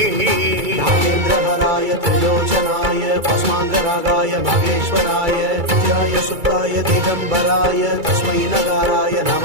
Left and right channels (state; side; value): late; left; 2.3 ms